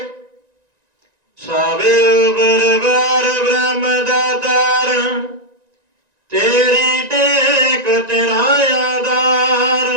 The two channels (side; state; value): left; late; 1.9 ms